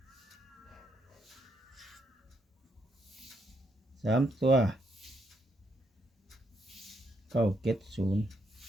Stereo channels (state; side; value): normal; both; correlation 0.77